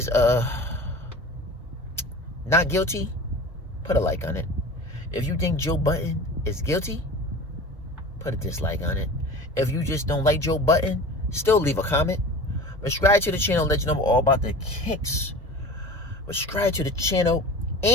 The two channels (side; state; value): both; normal; correlation 0.36